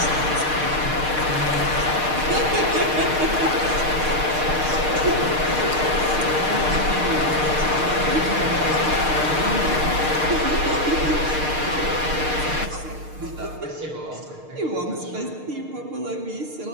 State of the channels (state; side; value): late; left; 6.6 ms